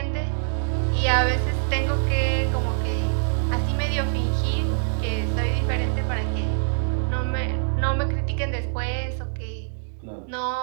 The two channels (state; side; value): silent; left; digital silence